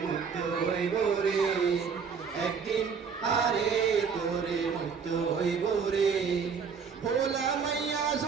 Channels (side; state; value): left; quieter; 6.0 dB